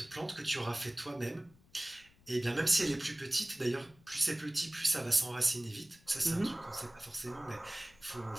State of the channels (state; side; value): noise; left; rumble, 28 dB below the sound